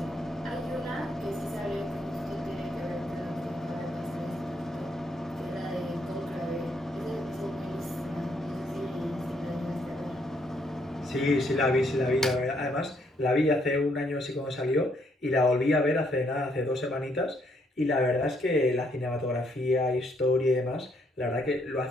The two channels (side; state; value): both; normal; correlation 0.72